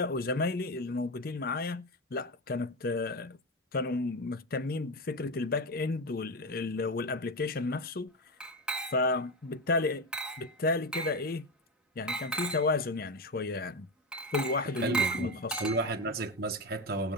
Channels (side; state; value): both; normal; correlation 0.16